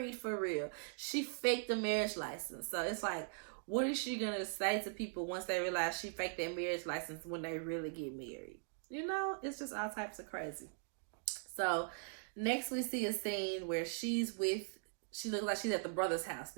for real. She faked the marriage license. So it's like, what is she going to say to people once they realize she faked that marriage license when they really get married? You know, it's just all types of crazy. So next we see a scene where she looks like she's at the brother's house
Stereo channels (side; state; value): left; silent; digital silence